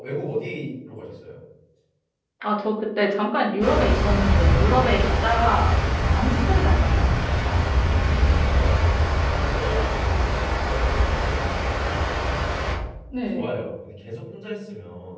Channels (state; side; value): identical; both; correlation 1.00